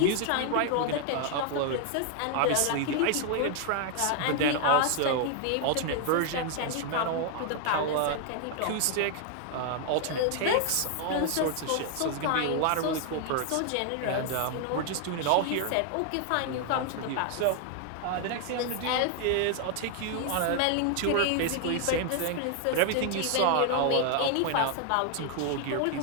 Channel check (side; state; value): both; different; correlation 0.00